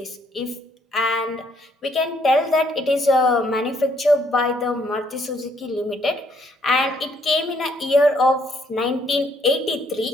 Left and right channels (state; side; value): normal; both; correlation 0.68